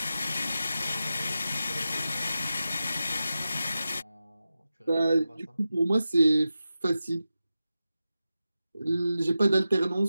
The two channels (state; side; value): inverted; both; correlation -0.92